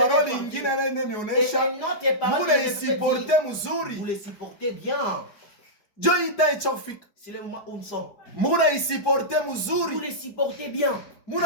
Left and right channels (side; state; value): right; late; 4.9 ms